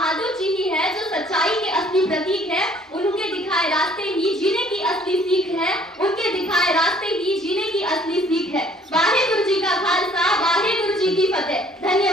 जी ही है जो सच्चाई के असली प्रतीक है। उनके दिखाए रास्ते ही जीने की असली सीख है, उनके दिखाए रास्ते ही जीने की असली सीख है। वाहेगुरु जी का खालसा, वाहेगुरु जी की फतेह।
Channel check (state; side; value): normal; both; correlation 0.58